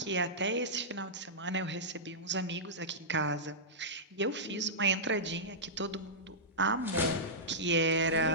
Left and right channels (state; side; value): normal; both; correlation -0.14